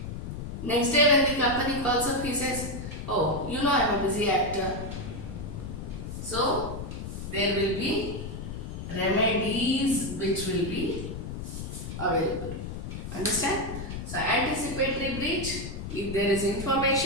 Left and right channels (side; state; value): left; noise; rumble, 7 dB below the sound